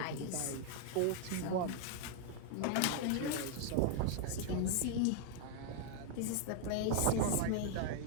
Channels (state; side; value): different; both; correlation 0.00